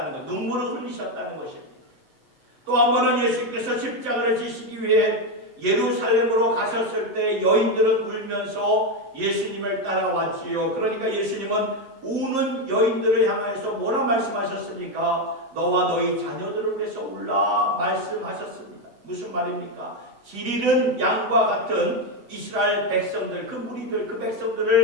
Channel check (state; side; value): late; left; 7.5 ms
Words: 것, 눈물을 흘리셨다는 것입니다. 또 한 번은 예수님께서 십자가를 지시기 위해 예루살렘으로 가셨을 때 여인들은 울면서 예수님을 따라왔지요. 그러니까 예수님은 우는 여인들을 향해서 뭐라 말씀하셨습니까? 너와 너희 자녀들을 위해서 울라 말씀하셨습니다. 무슨 말입니까? 길 잃은 양과 같은 이스라엘 백성들, 그 무리들, 그